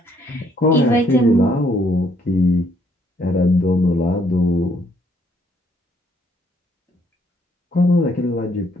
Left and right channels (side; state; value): both; normal; correlation 0.68